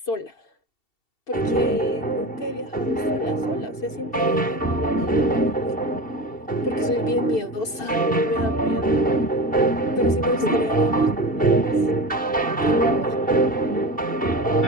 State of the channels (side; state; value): right; late; 2.7 ms